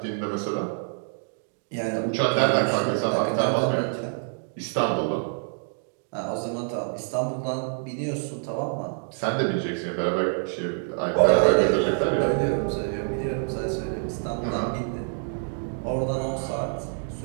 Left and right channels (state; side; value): silent; left; 61 dB below the other